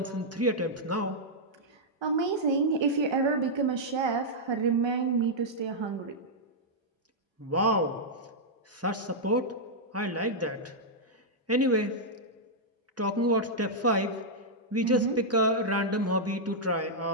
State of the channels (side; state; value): both; normal; correlation -0.07